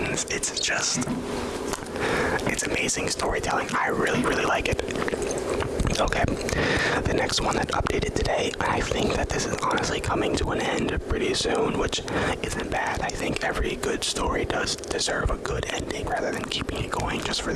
It's amazing storytelling. I really, really like it. Okay, the next one that updated today, I think that this is honestly coming to an end pretty soon, which isn't bad. I think every good story does deserve a good ending rather than keeping it going just for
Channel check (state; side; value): identical; both; correlation 1.00